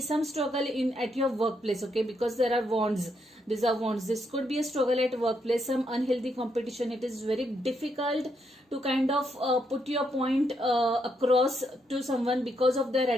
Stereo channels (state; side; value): normal; both; correlation 0.78